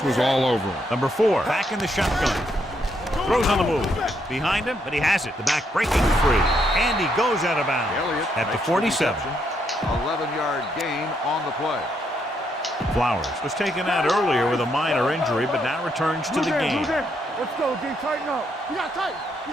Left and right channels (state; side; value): normal; both; correlation 0.76